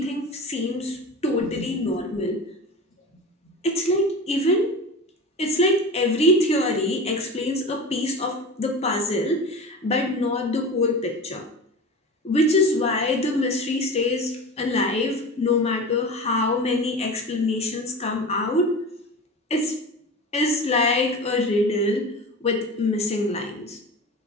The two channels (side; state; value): both; normal; correlation 0.31